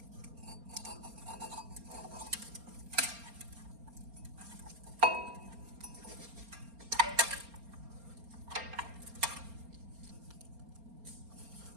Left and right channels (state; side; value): late; left; 4.3 ms